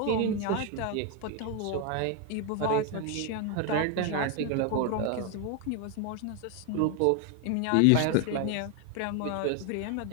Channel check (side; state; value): both; different; correlation 0.01